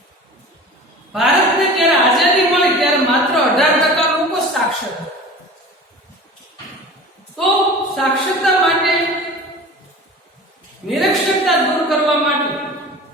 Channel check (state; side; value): normal; both; correlation 0.38